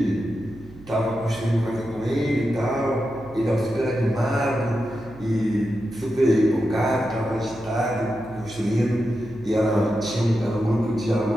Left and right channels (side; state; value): right; noise; hum, 20 dB below the sound